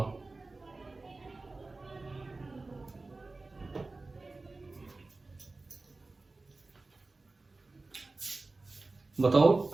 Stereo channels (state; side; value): quieter; left; 3.4 dB